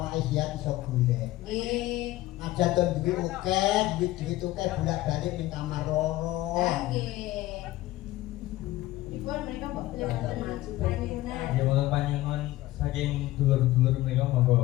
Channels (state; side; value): quieter; right; 16.6 dB